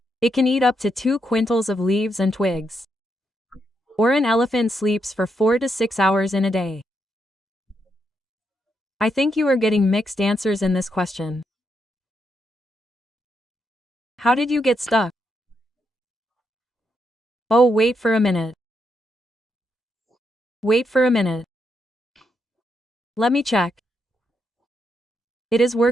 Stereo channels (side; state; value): both; normal; correlation 0.80